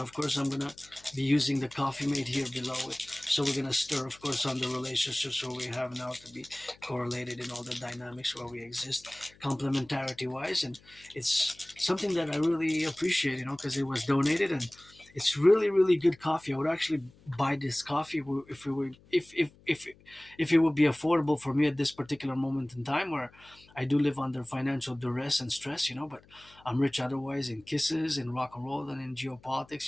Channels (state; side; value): noise; left; hum, 27 dB below the sound